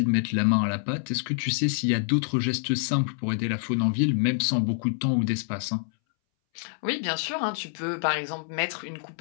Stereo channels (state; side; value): silent; right; 60 dB below the other